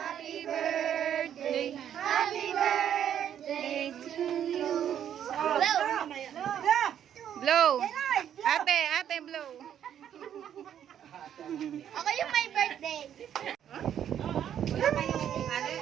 birthday. Happy birthday to you. Blow. Ate, blow. Ako yung may birthday. Wala kayong,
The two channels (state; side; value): quieter; left; 9.8 dB